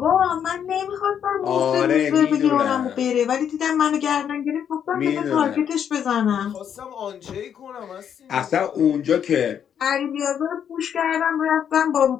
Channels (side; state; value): right; quieter; 8.6 dB